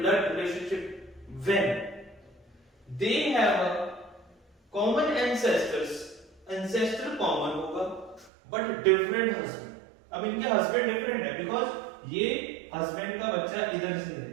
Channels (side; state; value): left; drops out; at 8.3 s